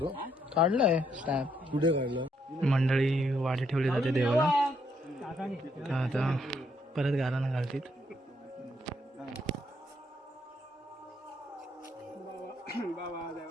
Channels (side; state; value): both; normal; correlation 0.73